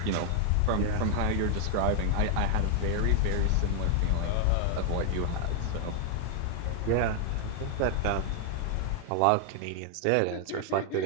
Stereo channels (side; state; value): both; different; correlation 0.00